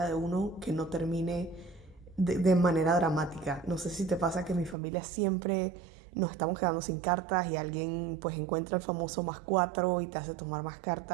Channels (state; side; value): drops out; left; at 4.8 s